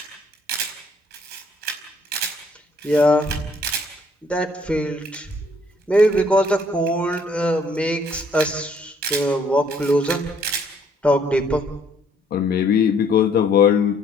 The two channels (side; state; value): both; normal; correlation 0.64